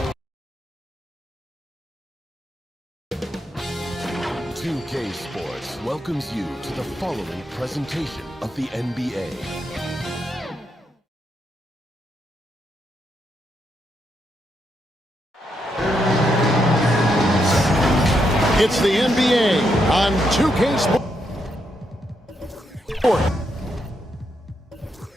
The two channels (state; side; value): normal; both; correlation 0.80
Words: K Sports welcomes you to the following presentation of the NBA. It's the NBA on 2K Sports.